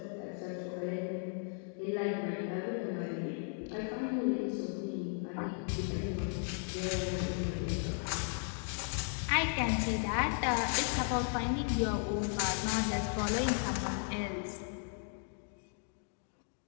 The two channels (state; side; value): silent; right; 54 dB below the other